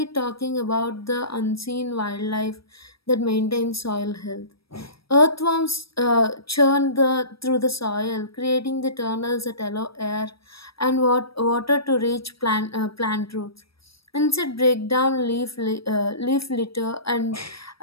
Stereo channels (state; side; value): late; right; 0.75 ms